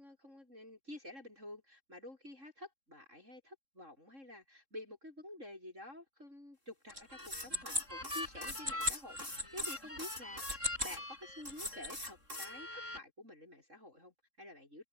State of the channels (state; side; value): late; left; 3.7 ms